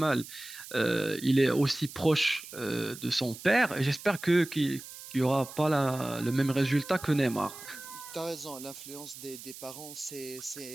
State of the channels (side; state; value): right; noise; hiss, 14 dB below the sound